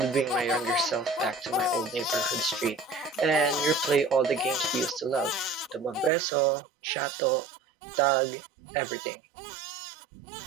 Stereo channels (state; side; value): drops out; left; at 6.1 s